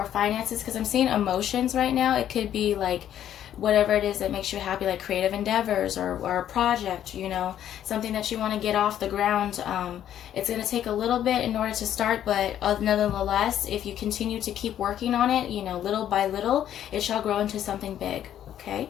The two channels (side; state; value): right; quieter; 10.8 dB